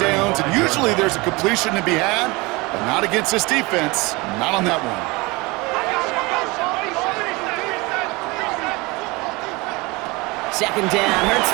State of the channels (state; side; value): quieter; left; 24.2 dB